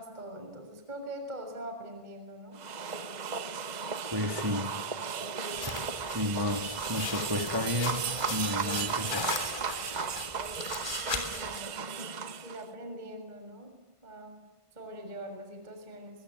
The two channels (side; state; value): left; late; 1.5 ms